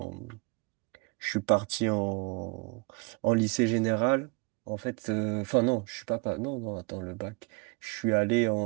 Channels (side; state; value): left; quieter; 29.7 dB